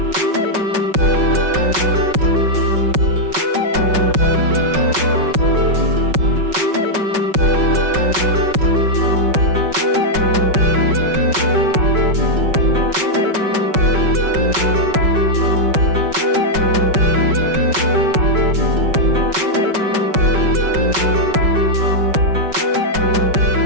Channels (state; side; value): late; left; 5.3 ms